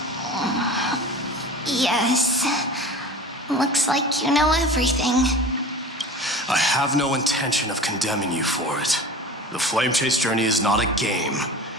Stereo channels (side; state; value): both; normal; correlation 0.37